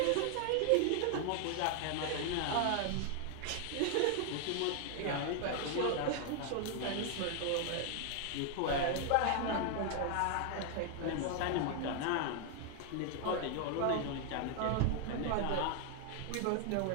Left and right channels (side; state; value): both; different; correlation 0.00